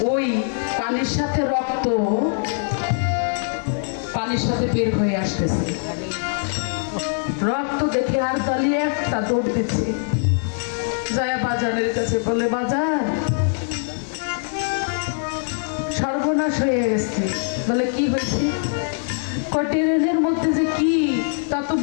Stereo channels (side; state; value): right; silent; 64 dB below the other